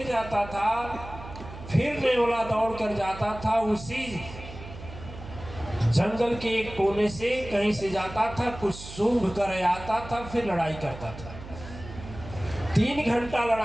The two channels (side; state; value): right; noise; hum, 13 dB below the sound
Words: जाता था, फिर नेवला दौड़ कर जाता था, उसी जंगल के एक कोने से कहीं से जाता था, कुछ सूंघ कर आता था, फिर लड़ाई करता था। 3 घंटा